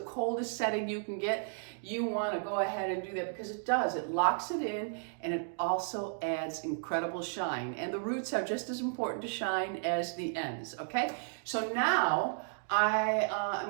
setting you can get, you want to go ahead and do that, because it does, it locks it in, and it also adds incredible shine, and the roots are just as important to shine as the ends, okay? So now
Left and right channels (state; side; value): silent; left; digital silence